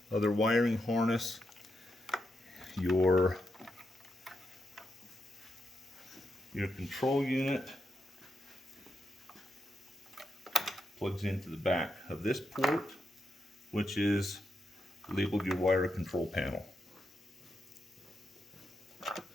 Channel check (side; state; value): both; normal; correlation 0.84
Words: other wiring harness. Your control unit plugs into the back of this port, which is labeled your wire control panel.